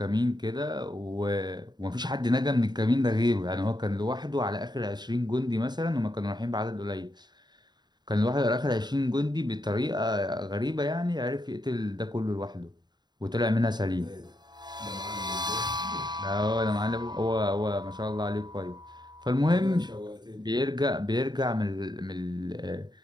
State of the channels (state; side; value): late; left; 0.21 ms